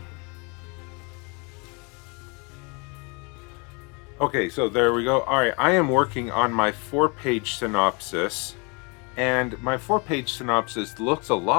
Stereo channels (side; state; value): right; quieter; 31.3 dB